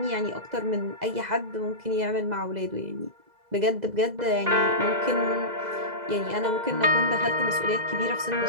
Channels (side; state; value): left; late; 2.0 ms